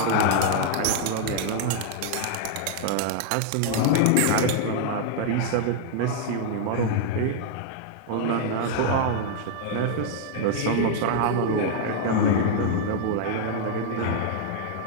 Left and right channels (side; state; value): both; different; correlation -0.01